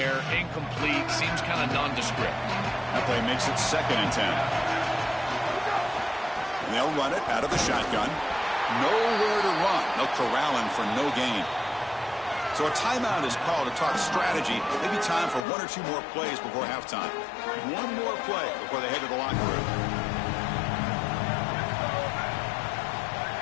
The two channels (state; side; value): drops out; right; at 15.5 s